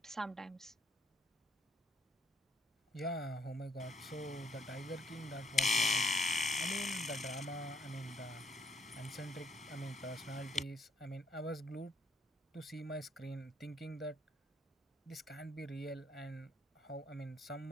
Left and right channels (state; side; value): normal; both; correlation 0.69